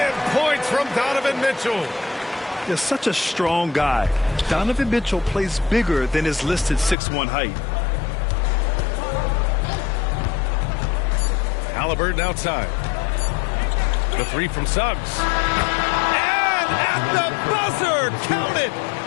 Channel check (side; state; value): right; drops out; at 7.0 s